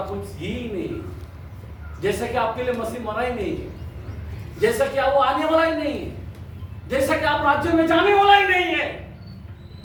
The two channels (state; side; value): identical; both; correlation 1.00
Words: कुछ ही नहीं, जैसा कि आपके लिए मसीह मरा ही नहीं है, जैसा कि वो आने वाला ही नहीं है, जैसा कि आप राज्य में जाने वाला ही नहीं है।